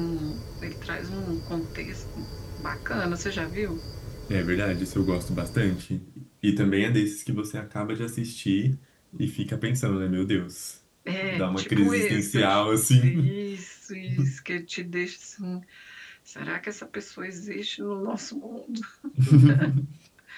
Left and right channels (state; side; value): identical; both; correlation 1.00